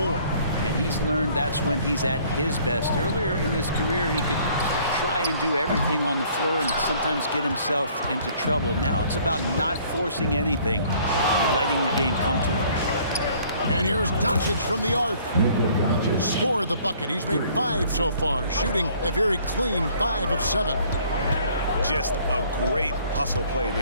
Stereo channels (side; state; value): both; inverted; correlation -0.58